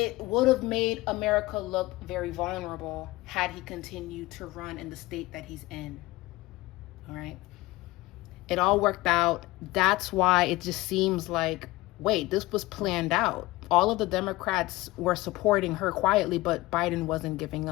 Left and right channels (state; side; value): quieter; right; 19.7 dB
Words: would have made America look very vulnerable had he continued to run in the state that he's in. All right. It all worked out. That's why it just seems like, wait, this was planned out. All of the Democrats were supporting her quietly, but Biden wasn't giving